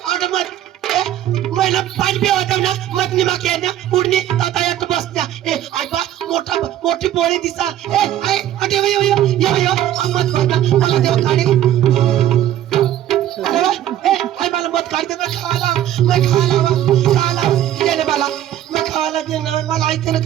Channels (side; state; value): left; quieter; 12.1 dB